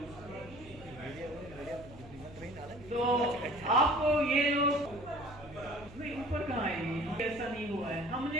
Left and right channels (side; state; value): right; noise; hum, 18 dB below the sound